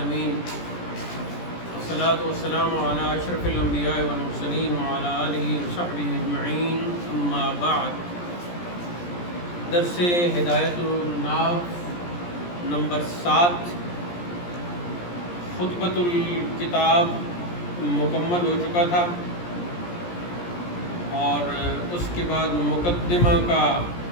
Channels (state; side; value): late; right; 17 ms